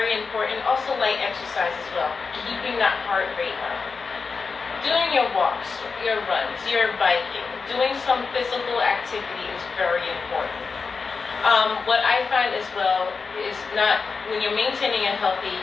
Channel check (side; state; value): right; quieter; 4.9 dB